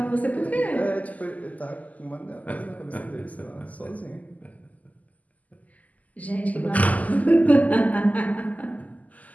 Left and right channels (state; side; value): late; right; 0.076 ms